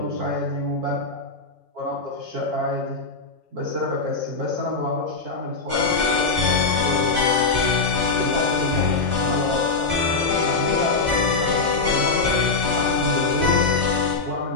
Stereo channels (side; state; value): right; quieter; 4.0 dB